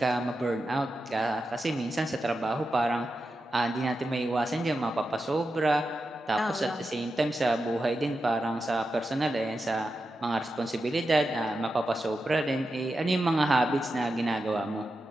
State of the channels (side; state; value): both; normal; correlation 0.89